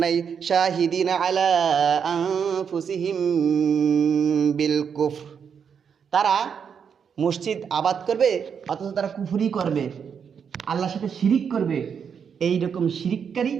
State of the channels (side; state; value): left; quieter; 7.0 dB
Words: নাই? শাহিদিনা আলা আনফুসিহিম বিল কুফর, তারা মসজিদ আবাদ করবে অথচ তারা কুফরি করবে, আল্লাহর সাথে শিরিক করবে। এইরকম শিরিককারী